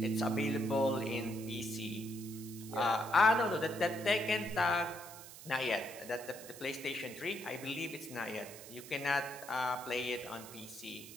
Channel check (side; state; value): right; noise; hiss, 15 dB below the sound